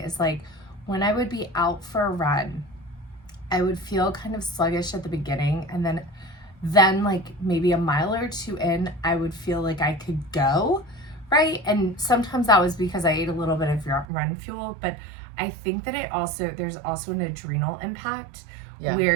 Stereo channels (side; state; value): left; drops out; at 14.1 s